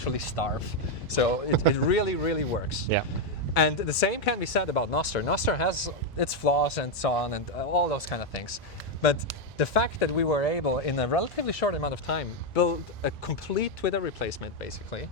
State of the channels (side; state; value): both; normal; correlation 0.03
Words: starve. So it really, really works. Yeah. And the same can be said about Nostr. Nostr has its flaws and so on, and all those kind of things. But the fact that we were able, in a relatively short amount of time, build a complete Twitter replacement, basically,